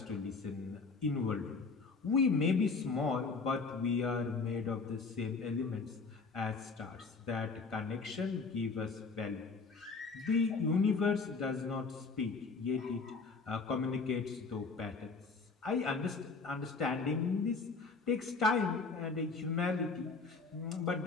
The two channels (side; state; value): right; quieter; 4.4 dB